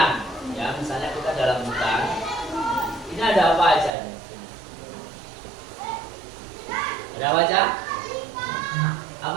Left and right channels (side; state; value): left; drops out; at 3.9 s